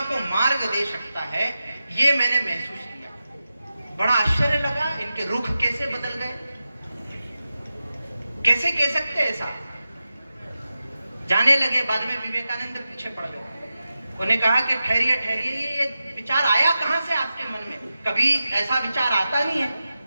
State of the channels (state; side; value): inverted; both; correlation -0.92